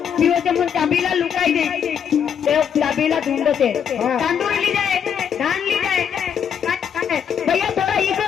पिओचे म्हणून चाबीला लुकाई दे ते चाबीला ढूंढते तांदूळ ली जाए धान ली जाए भैया थोड़ा इको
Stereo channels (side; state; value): right; quieter; 8.0 dB